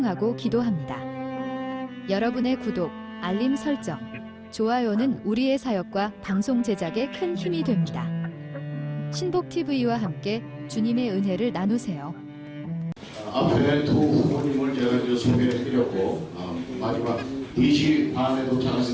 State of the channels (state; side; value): identical; both; correlation 1.00